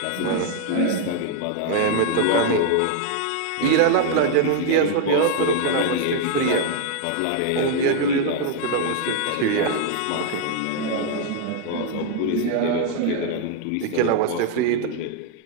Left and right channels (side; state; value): both; different; correlation 0.00